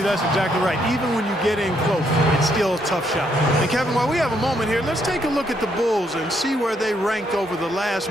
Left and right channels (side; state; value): both; normal; correlation 0.73